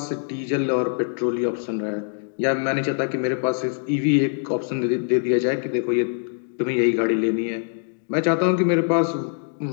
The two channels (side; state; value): right; silent; digital silence